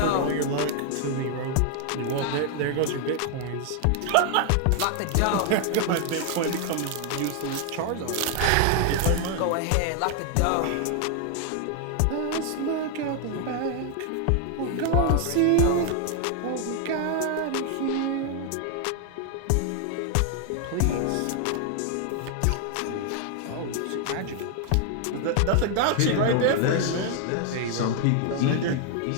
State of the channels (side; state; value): both; different; correlation 0.00